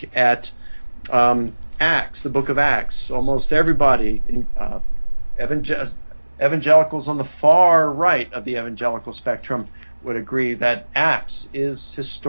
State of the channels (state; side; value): inverted; both; correlation -1.00